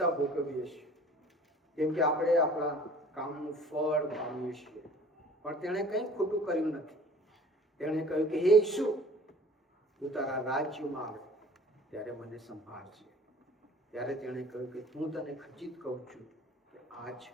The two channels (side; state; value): both; normal; correlation 0.48